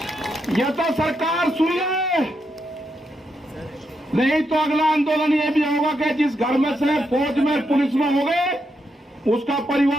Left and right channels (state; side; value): normal; both; correlation 0.82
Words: यह तो सरकार सुन ले, नहीं तो अगला आंदोलन यह भी होगा कि जिस घर में से फौज में पुलिस में हो गए, उसका